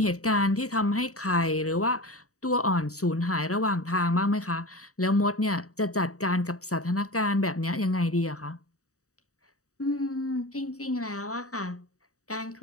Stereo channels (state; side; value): late; right; 0.65 ms